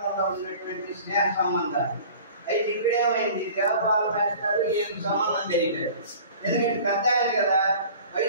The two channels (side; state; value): both; inverted; correlation -0.44